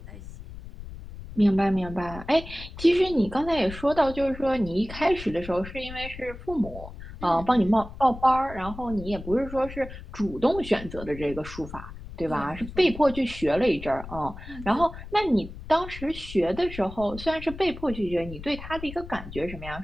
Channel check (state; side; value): noise; left; rumble, 13 dB below the sound